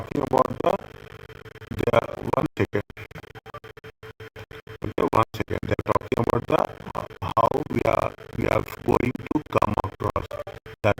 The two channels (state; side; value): identical; both; correlation 1.00